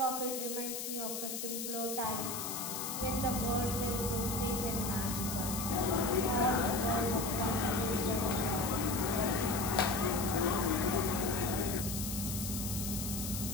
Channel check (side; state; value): left; noise; hiss, 4 dB below the sound